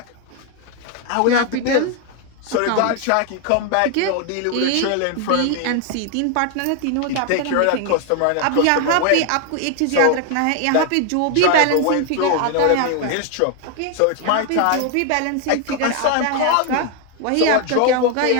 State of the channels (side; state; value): both; different; correlation 0.00